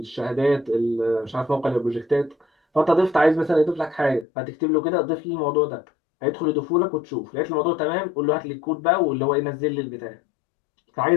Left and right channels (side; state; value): right; drops out; at 4.2 s